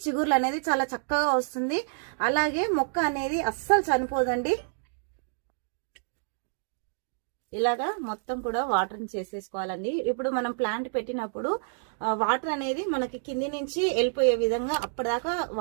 చిగుర్లు అనేది చాలా చక్కగా వస్తుంది. అలాగే మొక్క అనేది అస్సలు చనిపోదండి. ఇలాగా మొత్తం కూడా వాటరింగ్ చేసేసుకోవాలండి. ఇప్పుడు మనం ప్లాంట్ పెట్టినప్పుడు వాటర్ అనేది మనకి కింది నుంచి వెళ్ళిపోయే విధంగా అప్పటిదాకా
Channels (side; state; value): left; silent; digital silence